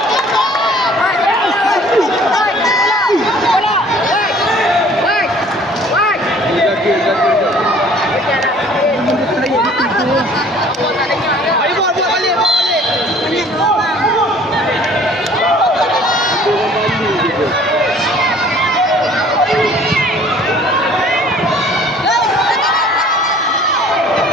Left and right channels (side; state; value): both; normal; correlation 0.53